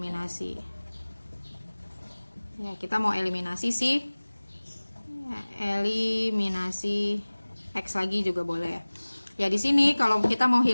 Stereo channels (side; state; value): both; inverted; correlation -1.00